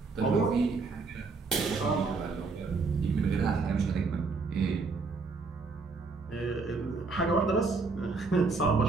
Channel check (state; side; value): quieter; left; 4.2 dB